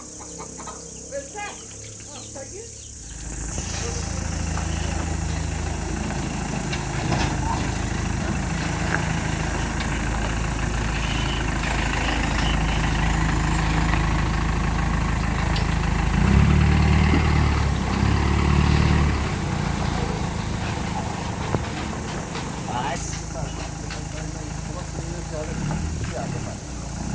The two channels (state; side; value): identical; both; correlation 1.00